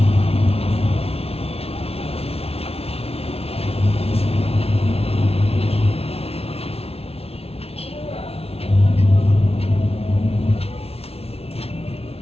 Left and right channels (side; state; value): right; late; 0.29 ms